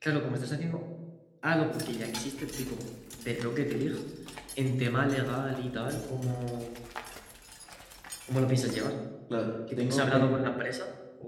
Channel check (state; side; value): identical; both; correlation 1.00